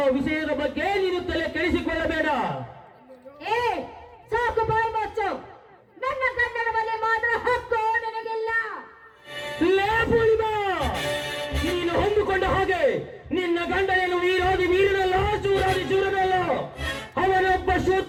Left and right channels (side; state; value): both; identical; correlation 1.00